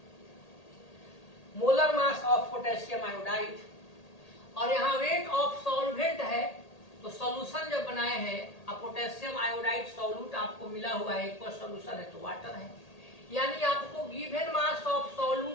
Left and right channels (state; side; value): late; right; 1.8 ms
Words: Molar mass of potassium iodide, और यहाँ वेट ऑफ सॉल्वेंट है। तो सॉल्यूशन जब बनाए हैं, अब पोटेशियम आयोडाइड सॉल्यूट आपको मिला हुआ है, एक सॉल्यूशन है तो वाटर है। यानी आपको गिवन मास ऑफ